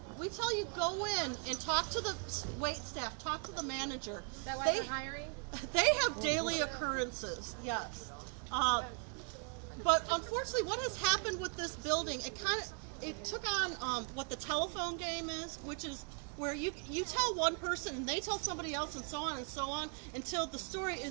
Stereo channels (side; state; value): left; quieter; 39.7 dB